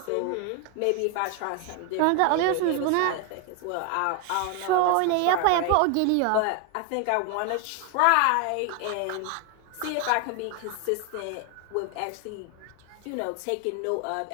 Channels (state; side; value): different; both; correlation 0.01